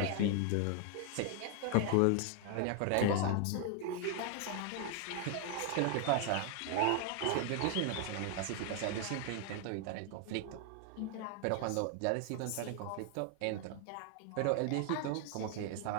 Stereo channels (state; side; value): different; both; correlation 0.01